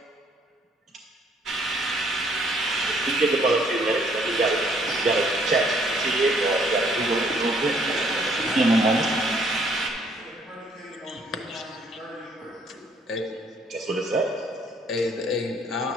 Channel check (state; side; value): normal; both; correlation 0.64